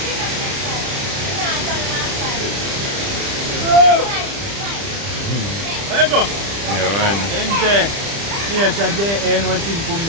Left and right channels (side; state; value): left; late; 30 ms